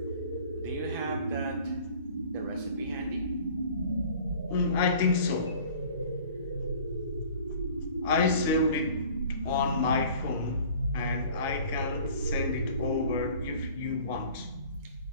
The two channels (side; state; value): both; inverted; correlation -0.48